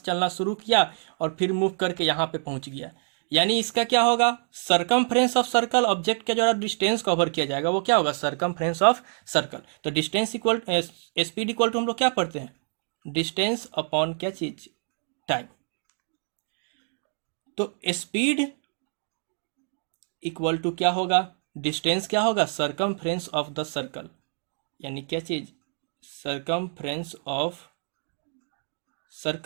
चलना शुरू किया और फिर मूव करके यहाँ पे पहुंच गया, यानी इसका क्या होगा, सरकमफ्रेंस ऑफ सर्कल, ऑब्जेक्ट का जो डिस्टेंस कवर किया जाएगा वो क्या होगा, सरकमफ्रेंस ऑफ सर्कल। तो distance equal, speed equal to हम लोग क्या पढ़ते हैं, डिस्टेंस अपॉन क्या चीज, टाइम। तो स्पीड इक्वल टू क्या होगा, डिस्टेंस क्या होगा, सरकमफ्रेंस ऑफ द सर्कल, यानी क्या चीज, सरकमफ्रेंस ऑफ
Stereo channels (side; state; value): left; silent; 60 dB below the other